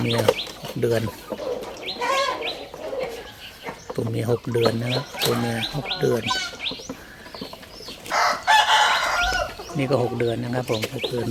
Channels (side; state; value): both; identical; correlation 1.00